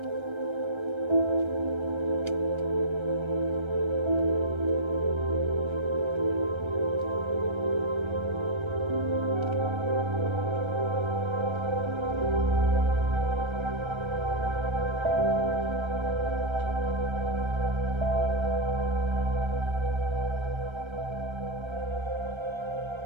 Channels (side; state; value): left; late; 1.3 ms